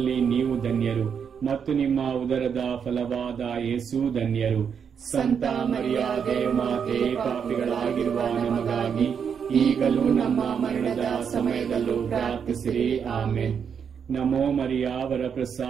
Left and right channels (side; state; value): left; quieter; 7.1 dB